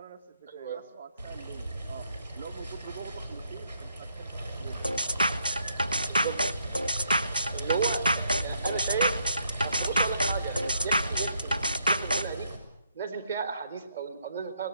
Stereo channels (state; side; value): inverted; both; correlation -0.74